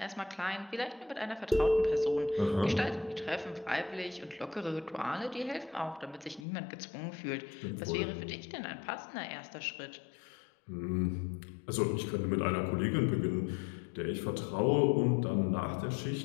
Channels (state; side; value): drops out; right; at 6.4 s